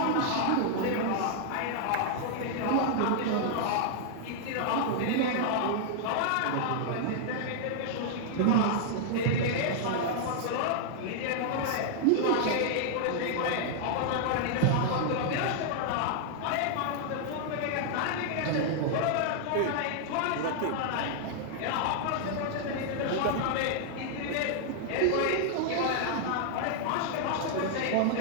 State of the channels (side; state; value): both; different; correlation -0.01